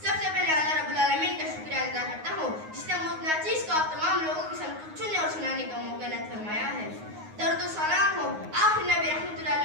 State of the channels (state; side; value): late; left; 9.5 ms